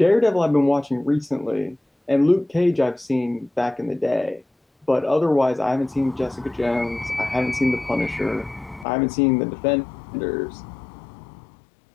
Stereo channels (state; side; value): drops out; right; at 8.8 s